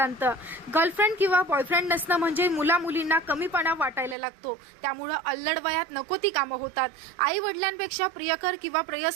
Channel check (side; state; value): left; drops out; at 4.2 s